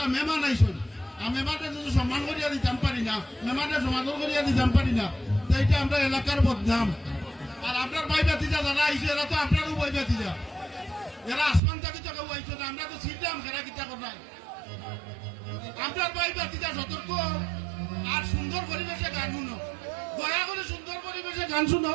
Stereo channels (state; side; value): drops out; left; at 11.6 s